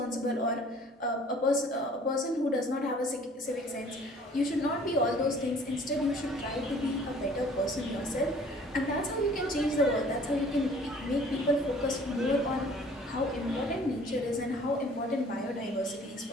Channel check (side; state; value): both; normal; correlation 0.53